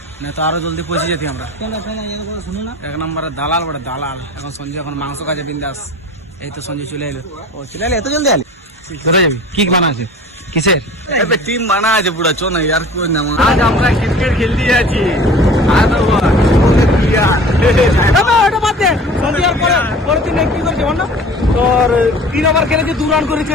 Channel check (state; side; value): normal; both; correlation 0.42